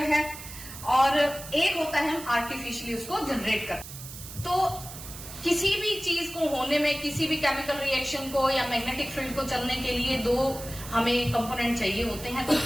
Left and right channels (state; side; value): noise; right; hiss, 13 dB below the sound